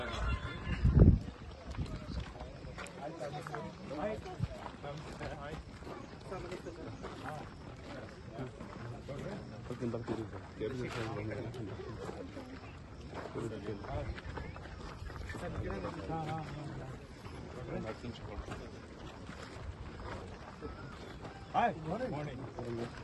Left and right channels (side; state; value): both; identical; correlation 1.00